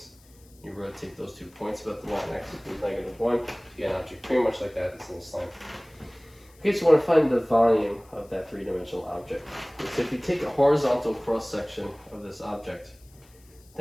You rotate those 2 points about the line x equals -1. You get an object pretty much like that that's in this line. Okay, so I want to find the volume of that three-dimensional object. So if you take a horizontal cross-section of this object,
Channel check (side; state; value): left; noise; hiss, 28 dB below the sound